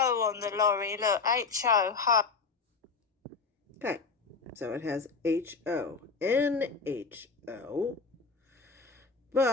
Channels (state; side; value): quieter; right; 4.8 dB